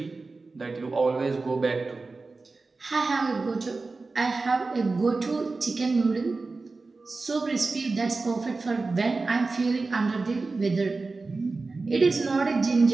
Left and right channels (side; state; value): left; quieter; 3.8 dB